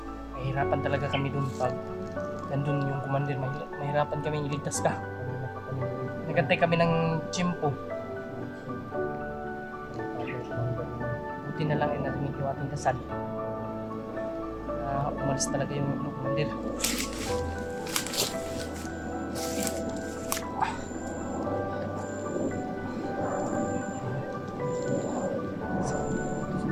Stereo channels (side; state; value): both; identical; correlation 1.00